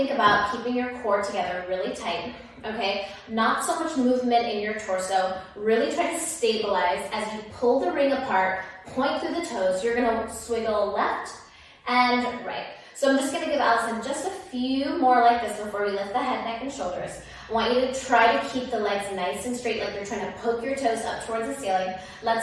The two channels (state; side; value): identical; both; correlation 1.00